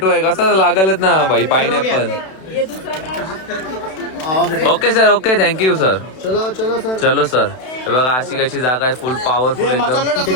आहे कसं लागलच ना भाई. Pineapple. Okay sir okay thank you sir. चलो सर. बघा अशी कशी जागा आहे फुल पॉवरफुल एकदम.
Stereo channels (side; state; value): right; late; 32 ms